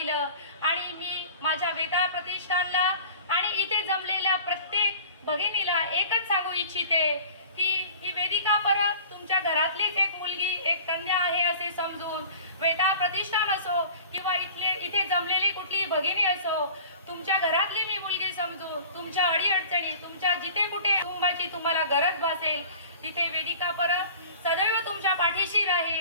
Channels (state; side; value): inverted; both; correlation -0.43